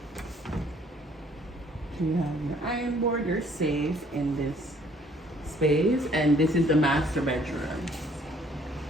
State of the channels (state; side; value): normal; both; correlation 0.61